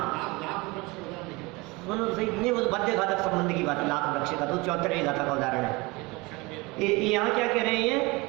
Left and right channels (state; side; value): quieter; left; 24.5 dB